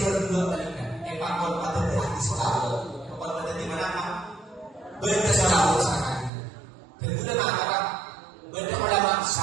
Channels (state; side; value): drops out; left; at 6.3 s